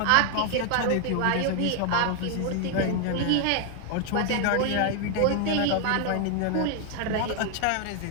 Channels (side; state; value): both; different; correlation 0.00